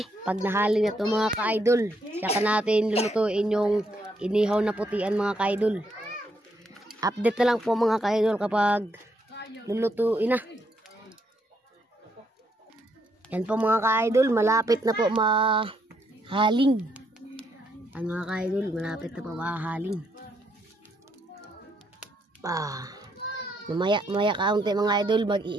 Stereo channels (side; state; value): both; normal; correlation 0.75